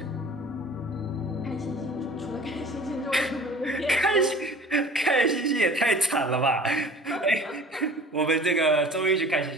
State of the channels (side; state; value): both; normal; correlation 0.44